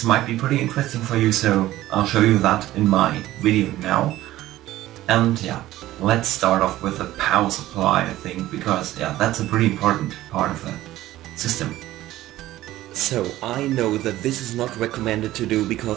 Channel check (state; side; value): quieter; left; 15.3 dB